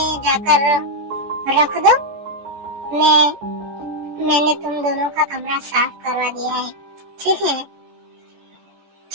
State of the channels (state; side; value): late; left; 14 ms